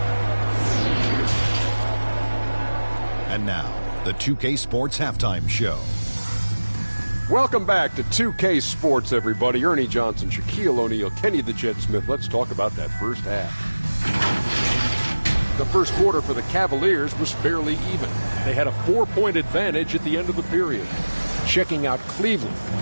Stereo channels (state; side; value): inverted; both; correlation -1.00